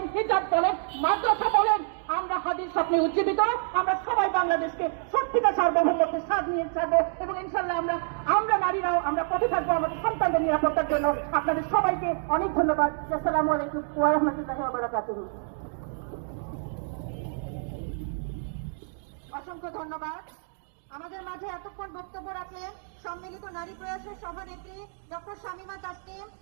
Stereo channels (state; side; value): silent; left; digital silence